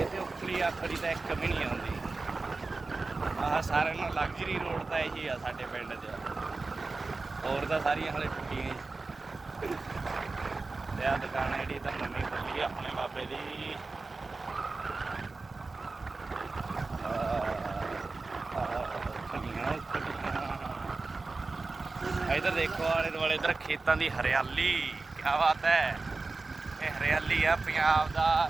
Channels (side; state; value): left; quieter; 3.7 dB